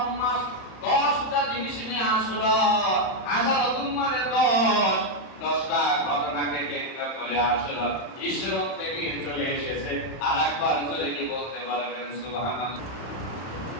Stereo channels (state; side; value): late; right; 31 ms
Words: মাস। 10টা জিনিস নিয়ে আশুরা, আশারাতুন মানে 10টা ঘটনাকে কেন্দ্র করে আশুরা ইসরাত থেকে চলে এসেছে। আরেকবার জোরে কি বলতে পারবেন সুবহানাল্লাহ।